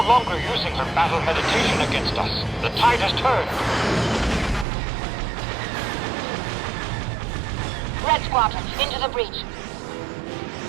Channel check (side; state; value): left; drops out; at 4.7 s